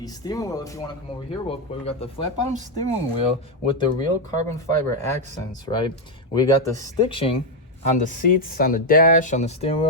steering wheel, if you want to come over here real quick. We got the flat bottom steering wheel with the real carbon fiber accents, right? We got the stitching on the seats, on the dash, on the steering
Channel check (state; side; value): normal; both; correlation 0.04